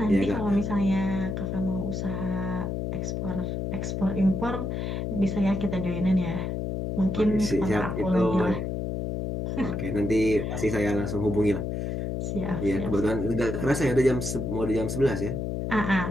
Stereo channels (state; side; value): noise; left; hum, 2 dB below the sound